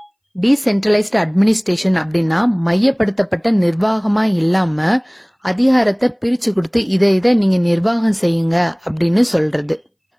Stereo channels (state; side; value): identical; both; correlation 1.00